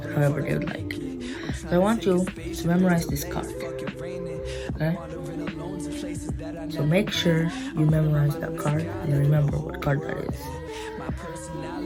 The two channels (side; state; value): both; identical; correlation 1.00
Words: they would like. So I want you to memorize this card. Okay? So make sure you memorize that card and remember what card that is.